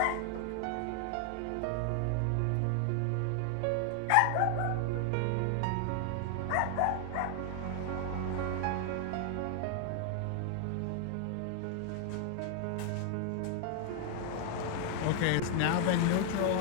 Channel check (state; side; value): different; both; correlation 0.00